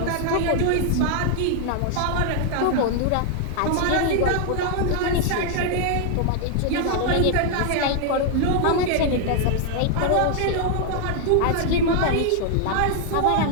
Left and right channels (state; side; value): different; both; correlation 0.00